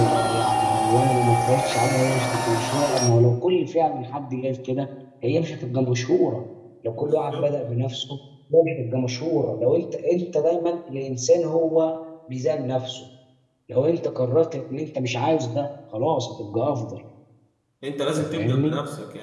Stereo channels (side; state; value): both; identical; correlation 1.00